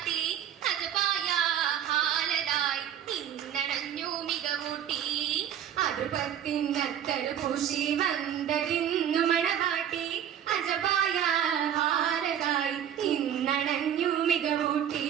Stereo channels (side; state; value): left; quieter; 9.7 dB